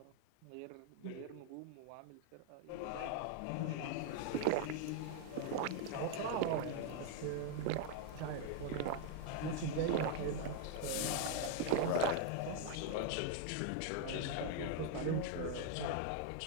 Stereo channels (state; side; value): different; both; correlation 0.00